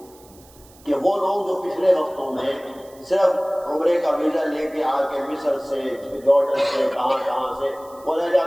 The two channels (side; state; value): right; noise; hiss, 26 dB below the sound